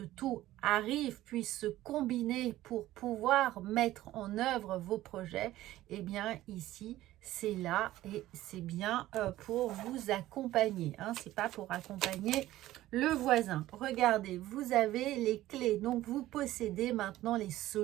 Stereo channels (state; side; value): quieter; left; 15.2 dB